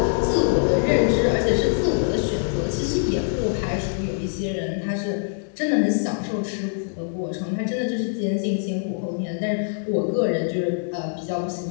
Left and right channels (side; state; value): right; silent; 61 dB below the other